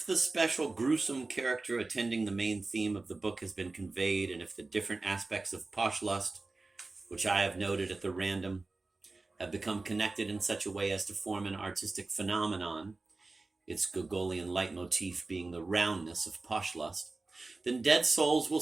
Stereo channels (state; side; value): quieter; left; 3.4 dB